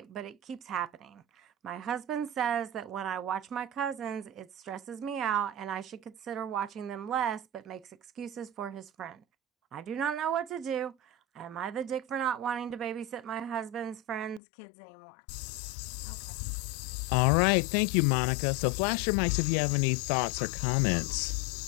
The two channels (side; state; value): right; drops out; at 14.4 s